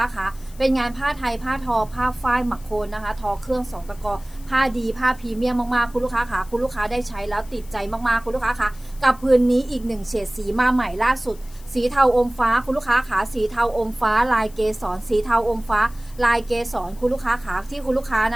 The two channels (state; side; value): noise; left; hiss, 23 dB below the sound